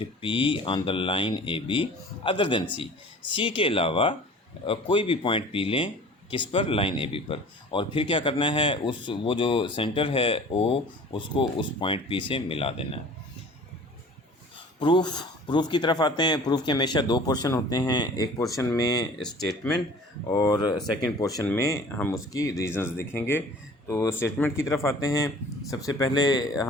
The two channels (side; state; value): both; normal; correlation 0.46